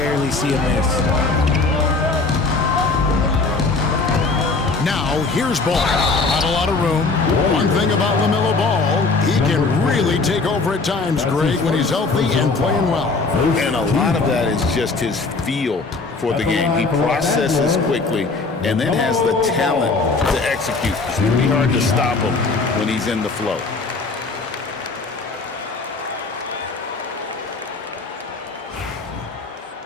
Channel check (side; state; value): right; quieter; 3.9 dB